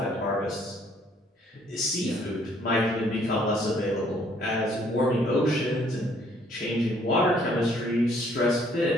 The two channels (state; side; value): normal; both; correlation 0.63